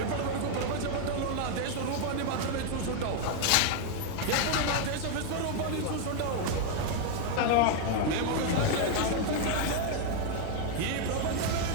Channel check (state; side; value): different; both; correlation 0.01